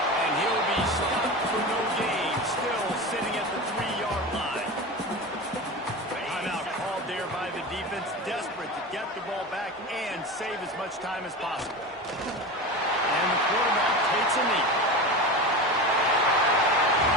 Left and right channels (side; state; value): both; normal; correlation 0.27